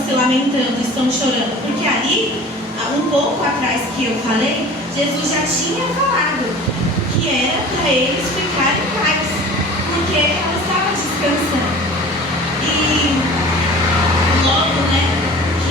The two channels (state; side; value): normal; both; correlation 0.42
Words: se lamentando, estão chorando? Porque ali, um pouco atrás que eu falei, Jesus já tinha falado que era para eles ficarem em paz, porque ela estava descansando. E logo,